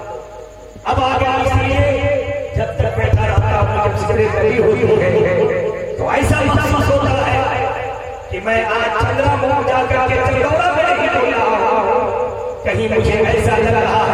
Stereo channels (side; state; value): both; identical; correlation 1.00